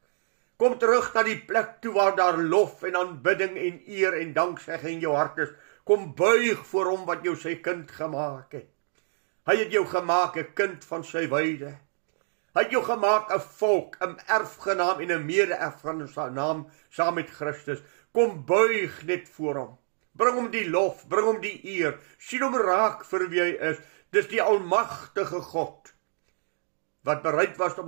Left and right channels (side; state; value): left; silent; digital silence